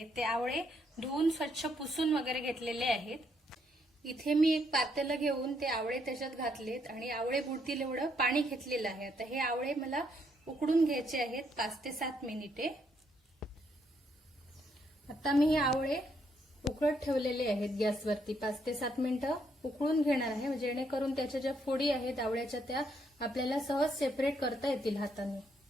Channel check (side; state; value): both; normal; correlation 0.73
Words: ते आवळे धुवून स्वच्छ पुसून वगैरे घेतलेले आहेत. इथे मी एक पातेलं घेऊन ते आवळे त्याच्यात घातलेत आणि आवळे बुडतील एवढं पाणी घेतलेलं आहे. आता हे आवळे मला उकडून घ्यायचे आहेत 5 ते 7 मिनिटे. आता मी हे आवळे उकळत ठेवलेले आहेत गॅसवरती. 5 ते 7 मिनिटं उकळून घेणार आहे, जेणेकरून त्याच्या ज्या फोडी आहेत आवळ्याच्या त्या आपल्याला सहज सेपरेट करता येतील हाताने.